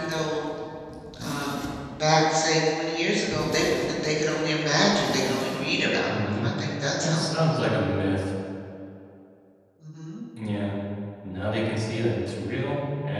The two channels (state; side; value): identical; both; correlation 1.00